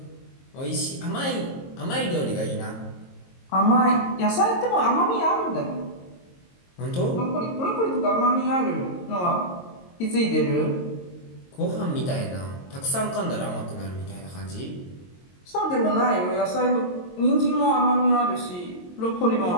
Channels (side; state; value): right; late; 22 ms